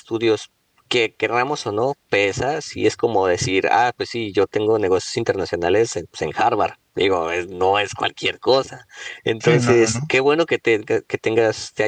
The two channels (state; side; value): identical; both; correlation 1.00